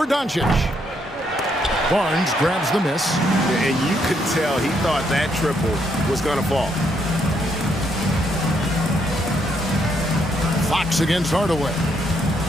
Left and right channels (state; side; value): normal; both; correlation 0.74